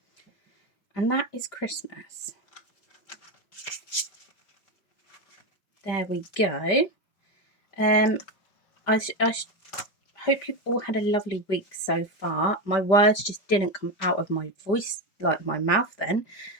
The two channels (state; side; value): late; right; 5.0 ms